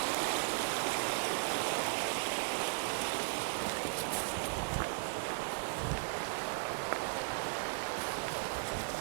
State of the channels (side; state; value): left; silent; digital silence